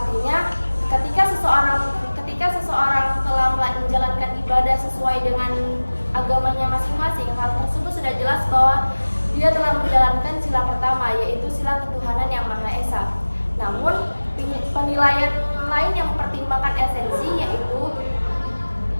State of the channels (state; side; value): inverted; both; correlation -1.00